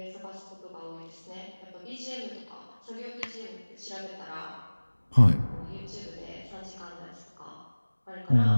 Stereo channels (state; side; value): inverted; both; correlation -1.00